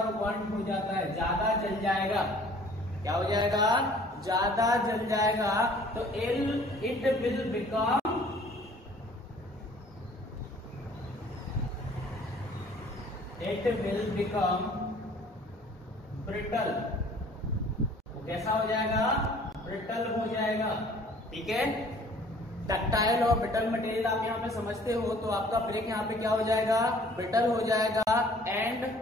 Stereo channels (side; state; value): both; normal; correlation 0.53